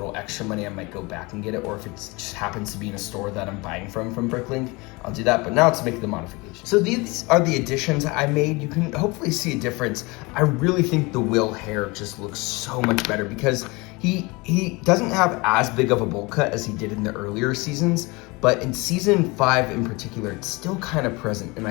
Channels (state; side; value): quieter; right; 25.3 dB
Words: extra money, I might go back and get it, or if it just happens to be in a store that I'm buying from BrickLink, I'll do that. But now let's make the modification. So these are the additions I made. You can hopefully see a difference. I really think the Will hair just looks so much better because he doesn't have as big of a bowl cut as he did in the earlier seasons, but in season 5 in particular, it's still kind of present, and I